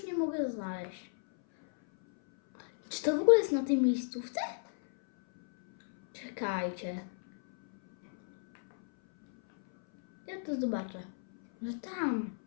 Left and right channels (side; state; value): right; silent; 56 dB below the other